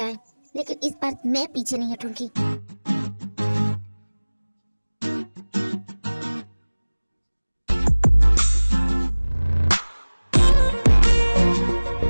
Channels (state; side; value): inverted; both; correlation -1.00